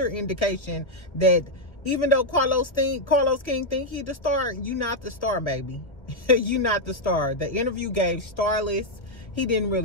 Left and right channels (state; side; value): late; right; 1.1 ms